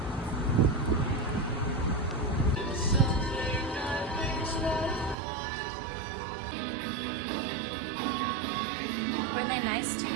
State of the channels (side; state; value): left; drops out; at 5.2 s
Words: Were they nice to